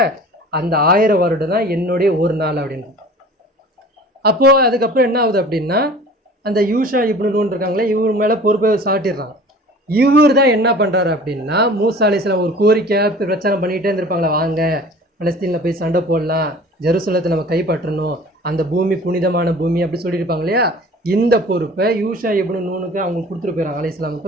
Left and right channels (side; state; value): both; normal; correlation 0.44